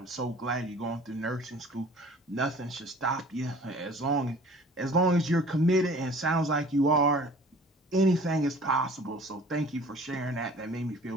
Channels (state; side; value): normal; both; correlation 0.48